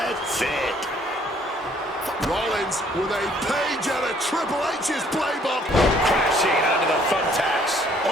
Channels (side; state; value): both; normal; correlation 0.62